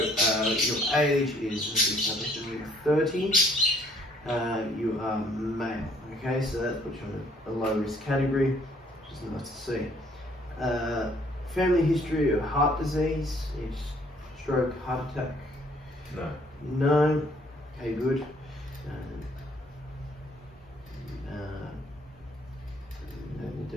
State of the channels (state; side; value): normal; both; correlation 0.62